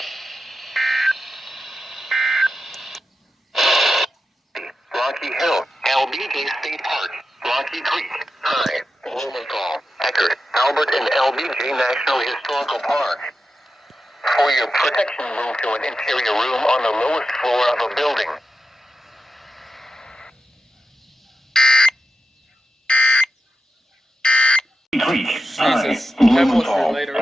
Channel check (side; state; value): both; normal; correlation 0.90